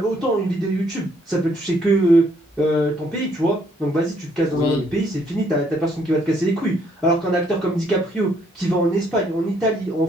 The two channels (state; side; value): normal; both; correlation 0.68